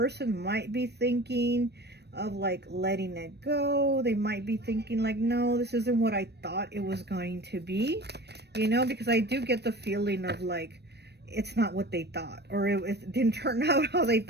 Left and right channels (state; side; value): late; left; 0.49 ms